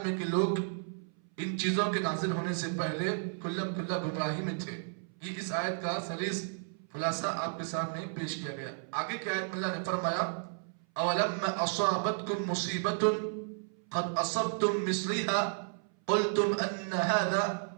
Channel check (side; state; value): left; silent; 56 dB below the other